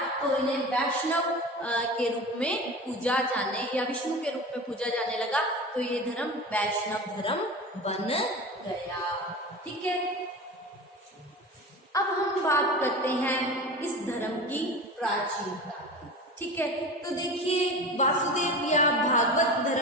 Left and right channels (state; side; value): normal; both; correlation 0.32